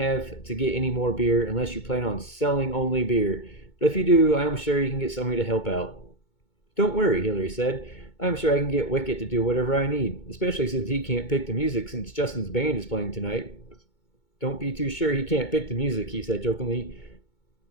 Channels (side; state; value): right; late; 2.2 ms